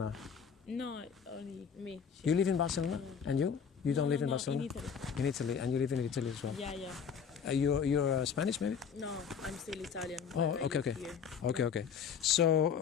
No, only me. You live in Barcelona? And you? You don't live in Barcelona? In Italy. In Italy, and you live in Italy as well? Yeah. You're Spanish, maybe? No, I'm still Italian. Oh, okay.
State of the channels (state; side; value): quieter; right; 6.9 dB